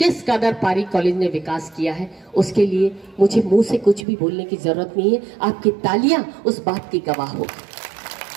कदर पारिक कॉलेज ने विकास किया है, उसके लिए मुझे मुंह से कुछ भी बोलने की जरूरत नहीं है। आपकी तालियां उस बात की गवाह होगी।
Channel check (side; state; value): left; drops out; at 4.0 s